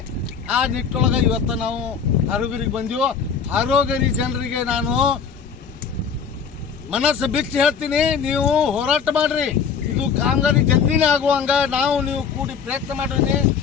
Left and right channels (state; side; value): quieter; right; 6.6 dB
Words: ಆ ನಿಟ್ಟೊಳಗೆ ಇವತ್ತು ನಾವು ಹಾರೋಗಿರಿಗೆ ಬಂದೀವೋ. ಹಾರೋಗಿರಿ ಜನರಿಗೆ ನಾನು ಮನಸ್ಸು ಬಿಚ್ಚಿ ಹೇಳ್ತೀನಿ, ನೀವು ಹೋರಾಟ ಮಾಡ್ರಿ. ಇದು ಕಾಮಗಾರಿ ಜಲ್ದಿನೇ ಆಗುವಂಗ ನೀವು ಕೂಡಿ ಪ್ರಯತ್ನ